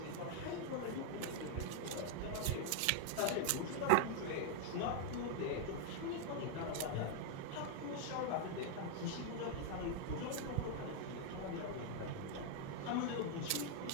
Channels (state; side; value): different; both; correlation 0.00